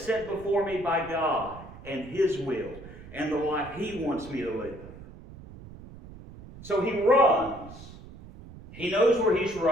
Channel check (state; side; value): noise; right; rumble, 16 dB below the sound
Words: set before me by God and His will and the life He wants me to live. So he runs. He knows where he's